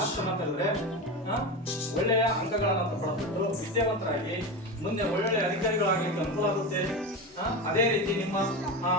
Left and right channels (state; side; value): normal; both; correlation 0.22